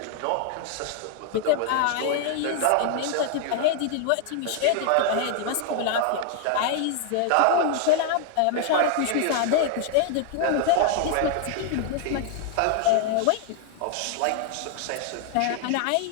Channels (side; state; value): both; different; correlation 0.00